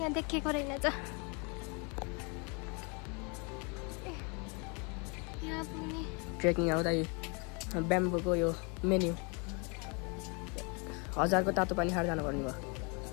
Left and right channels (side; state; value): right; quieter; 33.0 dB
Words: देखेको रहेनछ यहाँ पुग्ने ट्रेकिङ आउँदा ब्याम्बोको यो मेन्यु 1000 को तातो पानी खाएर जानुपर्ने भयो